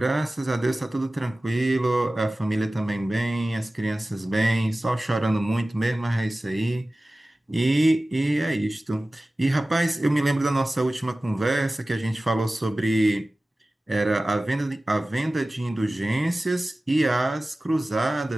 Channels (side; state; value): both; normal; correlation 0.97